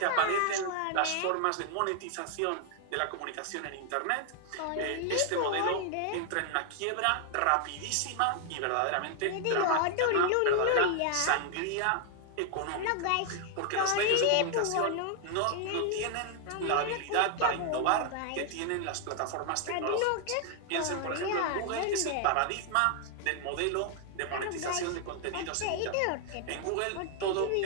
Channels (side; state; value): both; different; correlation 0.00